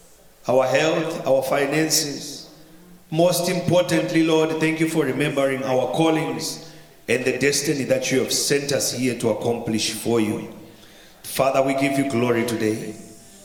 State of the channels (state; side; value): identical; both; correlation 1.00